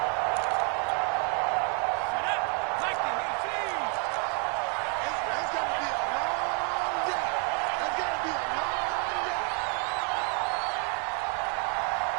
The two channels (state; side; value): quieter; left; 39.9 dB